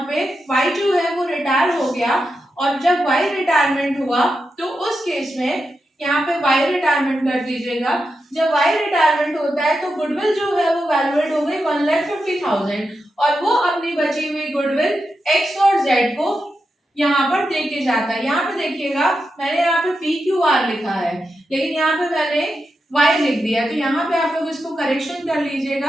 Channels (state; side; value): normal; both; correlation 0.88